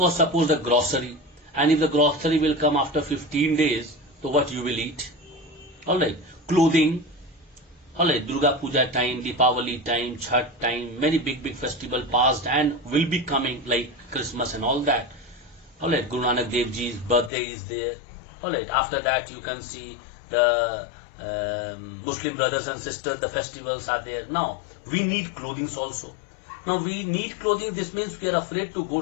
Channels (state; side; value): drops out; right; at 17.3 s